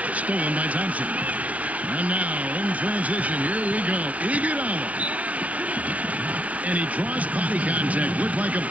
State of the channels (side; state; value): left; late; 0.067 ms